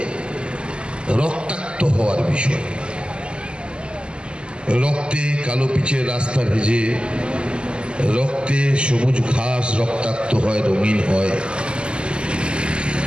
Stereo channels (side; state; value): left; late; 0.050 ms